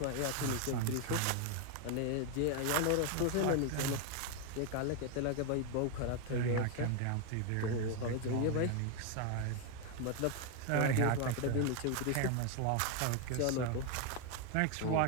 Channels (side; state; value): both; different; correlation 0.01